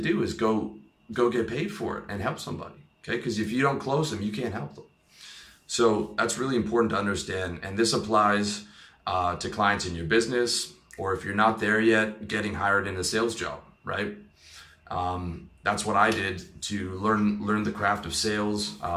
is go get paid for it and help somebody. Okay, because if you don't close them, you can't help them. So that's really important to understand, and this applies to clients in your business, or if you're not there yet, getting hired in a sales job, right? That's what I did to learn the craft of sales,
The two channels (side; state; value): both; identical; correlation 1.00